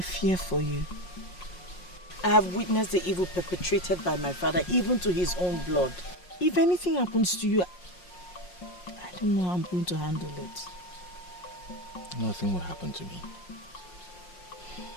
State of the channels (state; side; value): late; right; 5.6 ms